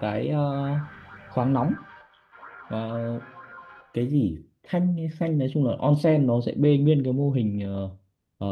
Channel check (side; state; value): both; identical; correlation 1.00